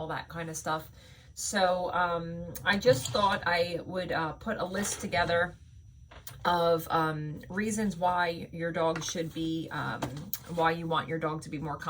that kind of stuff. So I just thought I would put a list together of reasons why your dog should be, why you want your dog to be more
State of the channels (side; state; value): both; identical; correlation 1.00